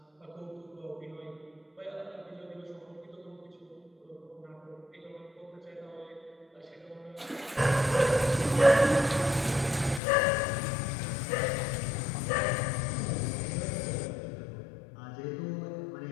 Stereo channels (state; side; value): drops out; right; at 10.0 s